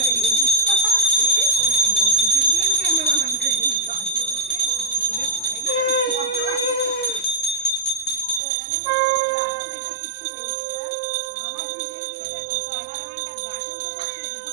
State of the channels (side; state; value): left; drops out; at 8.4 s